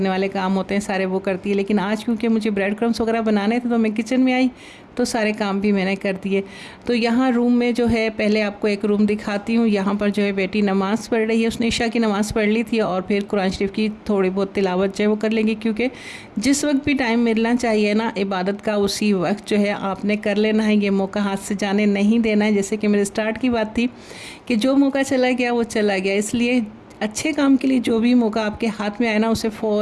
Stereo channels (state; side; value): identical; both; correlation 1.00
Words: वाले काम होते हैं सारे वो करती है। लेकिन आज क्योंकि मुझे ब्रेड क्रम्स वगैरह बनाने थे, तो मैं किचन में आई, तो सारे काम भी मैंने कर दिए। तो यहाँ रूम में जो है, पहले आपको एक रूम दिखाती हूँ। यहाँ पर जो है बेटी नमाज़ पढ़ रही है, उसने ईशा की नमाज़ पढ़ ली थी, और फिर कुरान शरीफ की थोड़ी बहुत तिलावत जो है वो कर लेंगी, क्योंकि जिस वक्त भी टाइम मिलना चाहिए ना इबादत का, उसी वक्त जो है आपने कर लेना है। ये मौका हाथ से जाने नहीं देना है। जैसे कि मेरे स्टार्ट की बात थी कि जो मौका चला गया वो चला गया, इसलिए अच्छे काम के लिए जो भी मौका आपके हाथ में आए ना, उसे